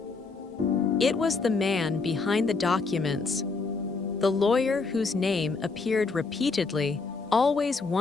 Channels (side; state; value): right; quieter; 4.2 dB